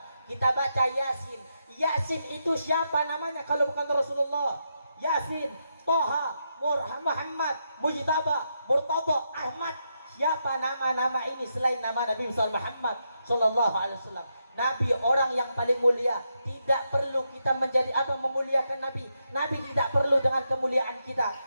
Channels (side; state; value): both; inverted; correlation -0.83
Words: Kita baca Yasin. Yasin itu siapa namanya kalau bukan Rasulullah? Yasin, Toha, Muhammad, Mujtaba, Murtada, Ahmad. Siapa nama-nama ini selain nama Nabi Muhammad sallallahu alaihi wasallam? Nabi orang yang paling mulia. Tidak perlu kita menjadi atau memuliakan Nabi. Nabi tidak perlu dengan kemuliaan kita.